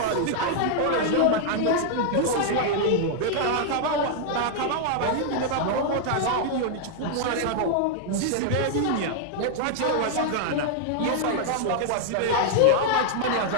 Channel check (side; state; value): both; different; correlation 0.00